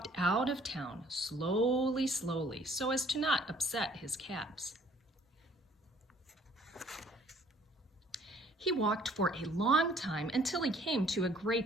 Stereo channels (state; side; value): normal; both; correlation 0.59